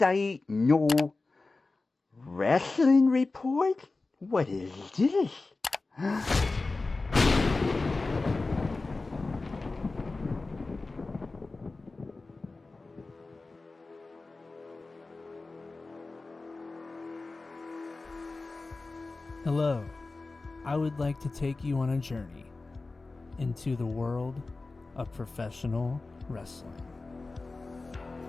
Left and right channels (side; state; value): right; quieter; 3.5 dB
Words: no. Wrestling report? What is this? Hello, I would like to take you on a journey into the world of professional wrestling.